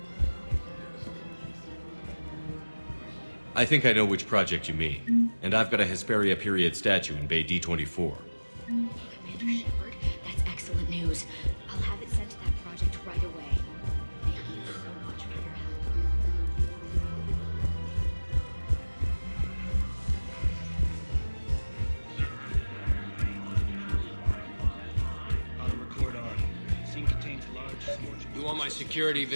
I think I know which project you mean. And I've got a Hesperia period statue in Bay D24. Commander Shepard, that's excellent news. I'll have it sent to that project right away. Thank you so much for your help. Auto record on. Scene contains large scorching. You want my security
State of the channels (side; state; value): both; inverted; correlation -1.00